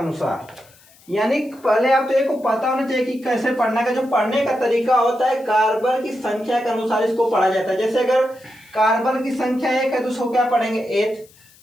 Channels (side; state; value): left; noise; hiss, 27 dB below the sound